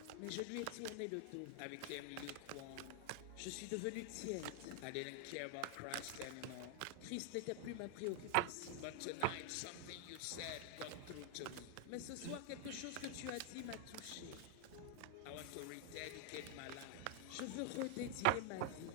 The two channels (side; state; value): both; different; correlation 0.00